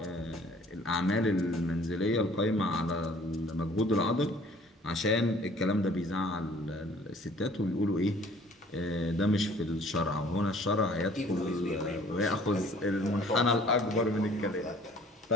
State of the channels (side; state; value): both; normal; correlation 0.54